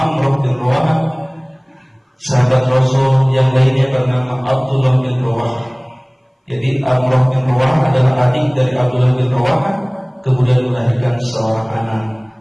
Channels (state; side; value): identical; both; correlation 1.00